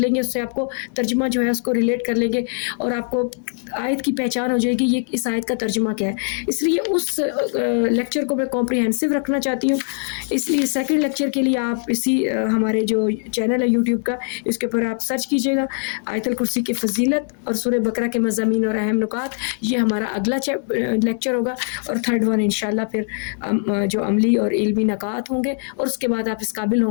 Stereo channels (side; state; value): right; silent; 60 dB below the other